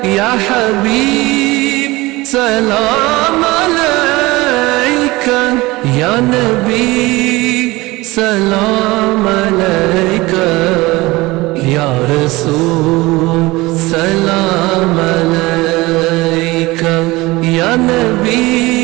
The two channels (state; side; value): quieter; left; 21.0 dB